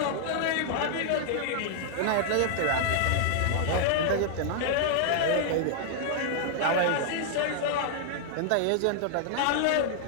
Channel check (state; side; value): different; both; correlation -0.01